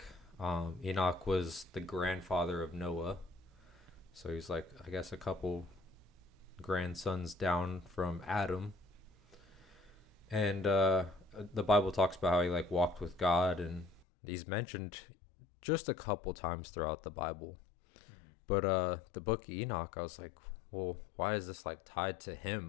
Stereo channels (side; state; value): right; drops out; at 14.1 s